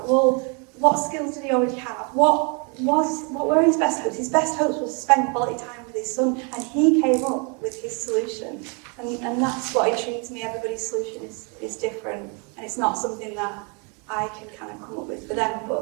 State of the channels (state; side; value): quieter; left; 35.0 dB